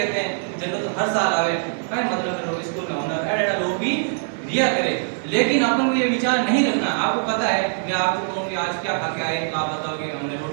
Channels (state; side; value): silent; left; digital silence